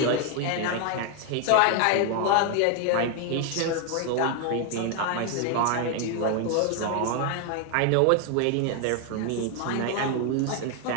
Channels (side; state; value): both; different; correlation 0.01